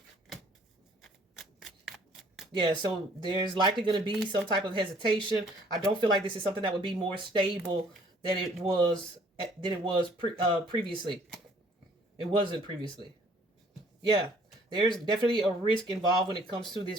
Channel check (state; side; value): normal; both; correlation 0.59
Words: Yeah, so there's likely going to be some type of hesitation. I don't feel like this is something that would be more stable than it was previously. It wasn't previously. Yeah, there's definitely a risk involved when it comes to this